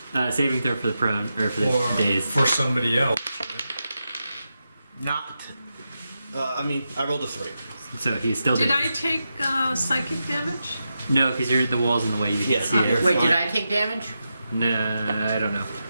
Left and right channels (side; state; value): both; inverted; correlation -0.88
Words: Saving throw for the prone or for the Or days. for somebody else. Not. I rolled a 3. So he's still Did dazed. I take psychic damage? No, because the wall's in the way. You Yeah, can see you're it. Wait, fine. did I take damage? No, I don't know.